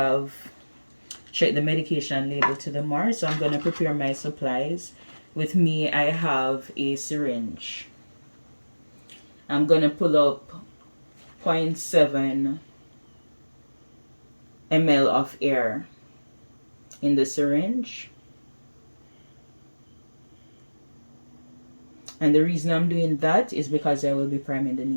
checked the medication label to the MAR. So I'm going to prepare my supplies. With me, I have a syringe. I'm going to pull up 0.7 ml of air in the syringe. And the reason I'm doing that is because I will be priming the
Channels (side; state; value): both; inverted; correlation -1.00